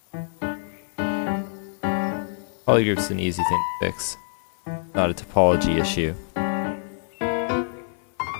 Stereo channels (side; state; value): right; silent; 58 dB below the other